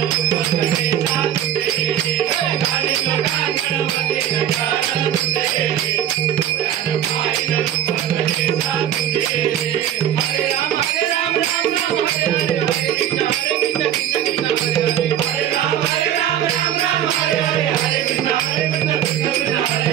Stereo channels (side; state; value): left; quieter; 10.5 dB